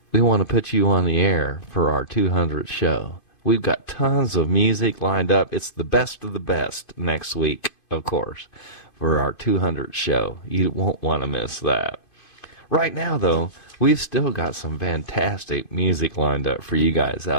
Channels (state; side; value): late; right; 2.5 ms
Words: We want to put you on the air for our 200th show. We've got tons of music lined up. It's the best of the best next week, of course, for our 200th show. You won't want to miss that. Right now, though, we've still got some fantastic music lined up for you guys